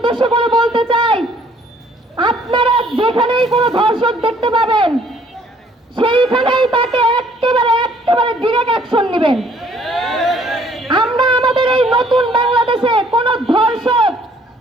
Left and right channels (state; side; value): normal; both; correlation 0.61